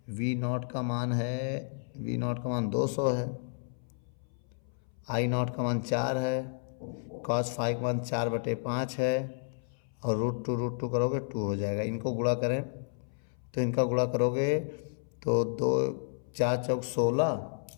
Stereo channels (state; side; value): silent; right; 57 dB below the other